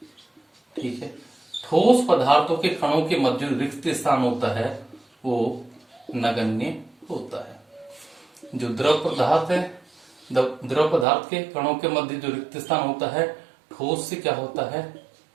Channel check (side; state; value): left; drops out; at 11.1 s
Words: ठीक है, ठोस पदार्थों के कणों के मध्य रिक्त स्थान होता है वो नगण्य होता है। जो द्रव पदार्थ है, द्रव पदार्थ के कणों के मध्य जो रिक्त स्थान होता है ठोस से क्या होता है,